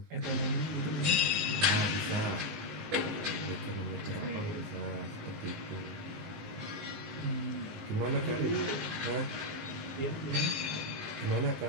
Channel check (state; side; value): late; left; 19 ms